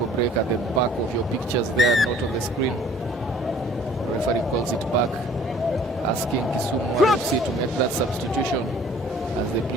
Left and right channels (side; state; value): both; normal; correlation 0.54